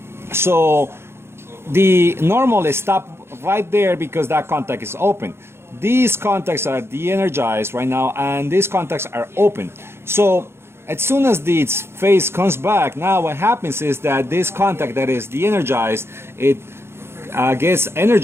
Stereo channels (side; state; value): left; late; 0.12 ms